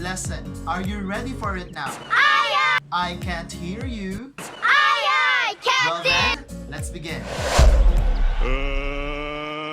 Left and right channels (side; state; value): both; identical; correlation 1.00